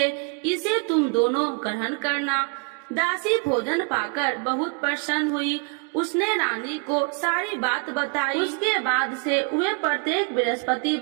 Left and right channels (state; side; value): quieter; left; 36.4 dB